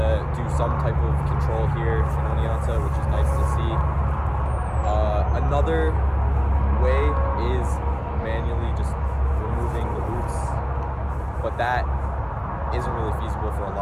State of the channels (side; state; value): both; identical; correlation 1.00